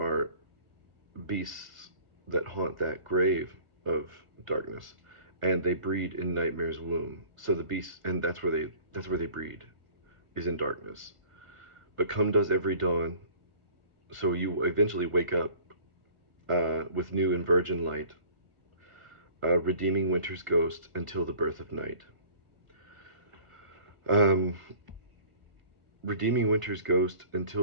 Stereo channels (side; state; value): left; late; 1.5 ms